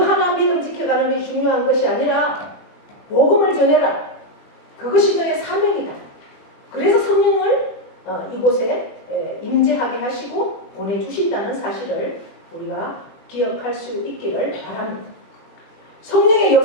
하나 믿음 지켜가는 것이 중요한 것이 아니라 복음을 전해라. 그것이 너의 사명이다. 그래서 성령을 이곳에 임재하게 하시고 보내주신다는 사실을 우리가 기억할 수 있기를 바랍니다. 성령의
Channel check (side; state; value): right; late; 21 ms